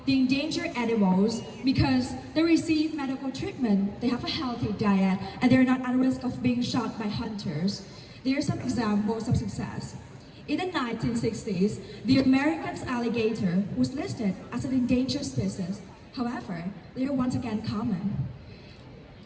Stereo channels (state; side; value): identical; both; correlation 1.00